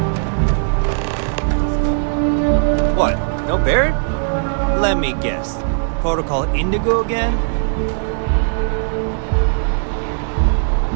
Hey, Bosco! What, no Barrett? Let me guess. Protocol Indigo again?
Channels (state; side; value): silent; left; digital silence